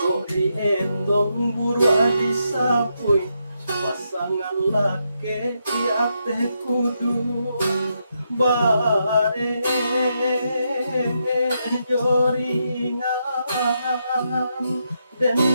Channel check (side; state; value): both; inverted; correlation -0.81